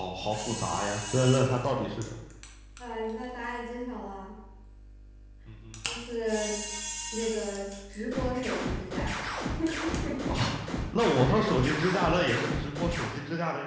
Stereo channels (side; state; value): both; identical; correlation 1.00